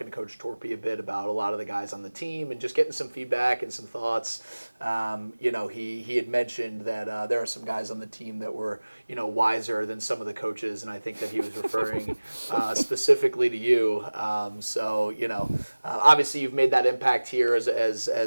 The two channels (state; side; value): inverted; both; correlation -1.00